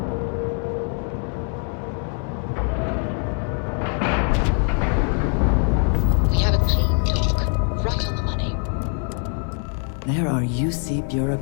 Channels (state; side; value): quieter; right; 39.8 dB